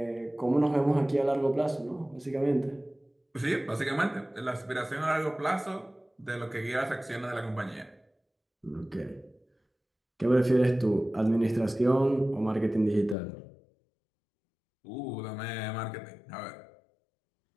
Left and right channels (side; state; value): right; drops out; at 13.2 s